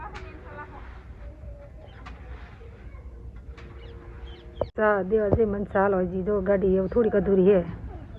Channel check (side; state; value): both; identical; correlation 1.00